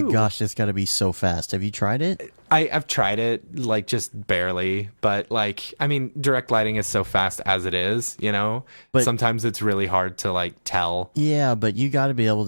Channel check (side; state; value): both; inverted; correlation -1.00